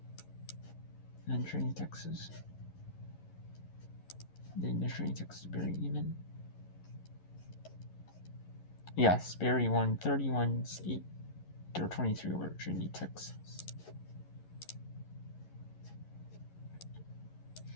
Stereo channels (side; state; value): right; late; 11 ms